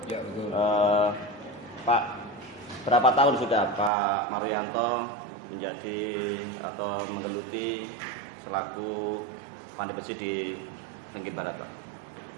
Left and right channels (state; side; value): drops out; left; at 3.9 s